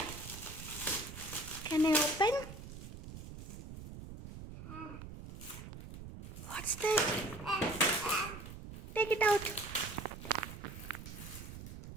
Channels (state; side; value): noise; right; rumble, 11 dB below the sound